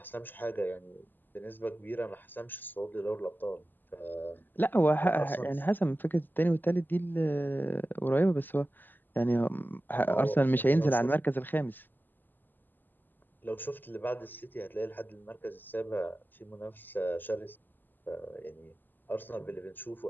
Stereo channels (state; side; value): late; right; 0.090 ms